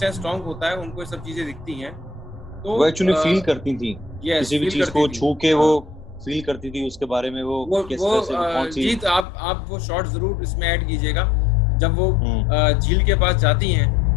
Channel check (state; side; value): drops out; right; at 9.2 s